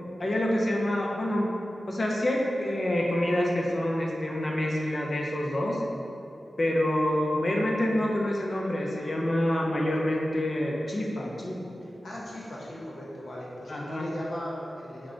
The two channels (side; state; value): both; normal; correlation 0.94